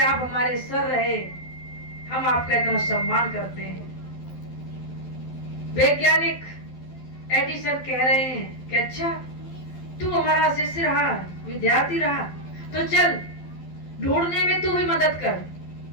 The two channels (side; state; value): right; late; 12 ms